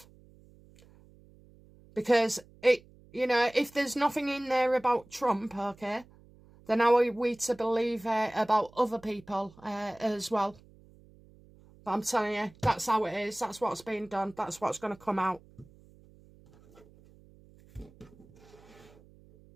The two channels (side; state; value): right; noise; hum, 26 dB below the sound